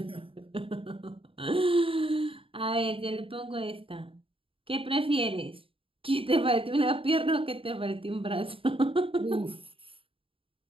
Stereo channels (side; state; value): left; late; 0.26 ms